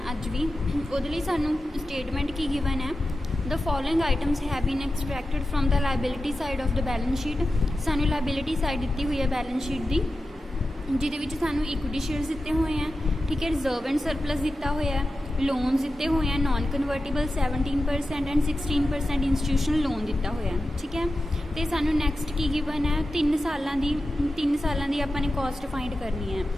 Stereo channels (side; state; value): both; normal; correlation 0.92